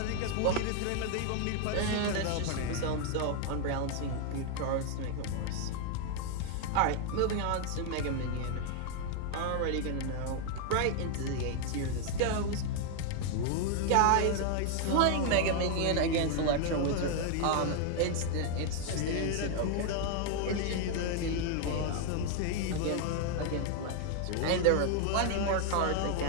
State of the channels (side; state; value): both; different; correlation 0.00